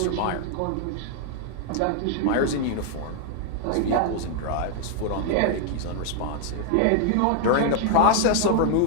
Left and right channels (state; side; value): different; both; correlation 0.00